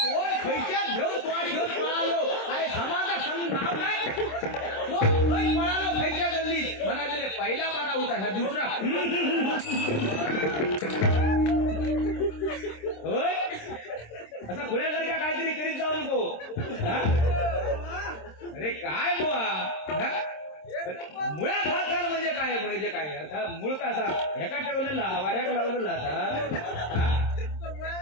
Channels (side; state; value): right; late; 26 ms